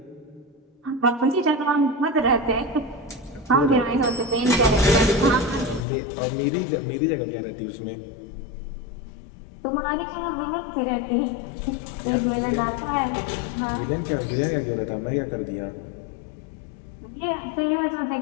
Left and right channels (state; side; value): drops out; right; at 5.9 s